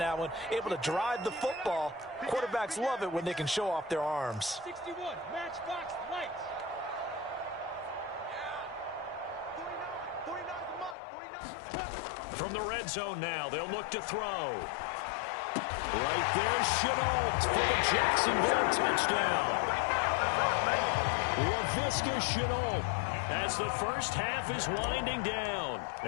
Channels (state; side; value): drops out; right; at 11.0 s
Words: one, able to drive the football. Quarterbacks love it when they can show off their arms. 61, matchbox lights. 49. From the red zone now, they'll look to throw. Right there, Chenault for the Jacksonville touchdown. Laviska Chenault as the first half is winding down.